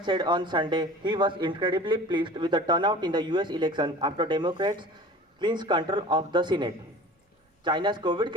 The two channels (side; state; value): both; normal; correlation 0.41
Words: said on Sunday he was incredibly pleased with the turnout in the US election after Democrats clinched control of the Senate. China's COVID